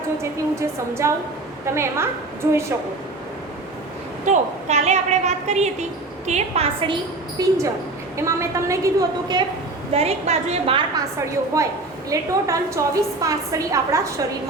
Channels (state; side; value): quieter; left; 3.1 dB